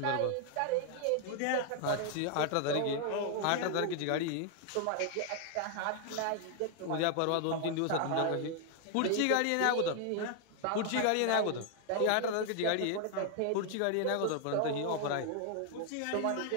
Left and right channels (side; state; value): both; different; correlation 0.00